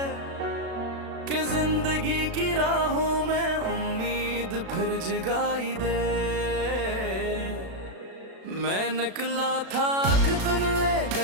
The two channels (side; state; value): left; late; 36 ms